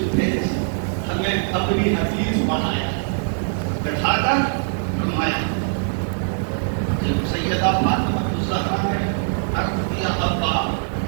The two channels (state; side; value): silent; left; digital silence